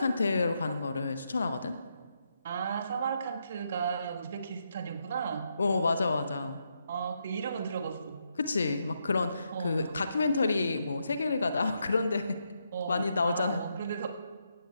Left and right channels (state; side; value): inverted; both; correlation -0.80